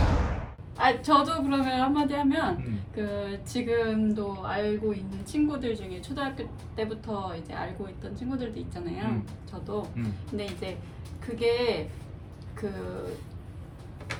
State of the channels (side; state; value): both; identical; correlation 1.00